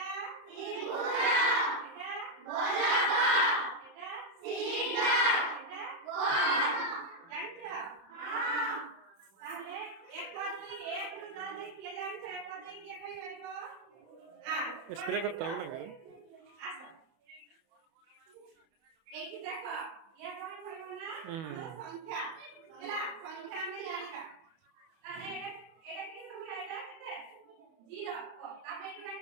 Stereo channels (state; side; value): late; left; 31 ms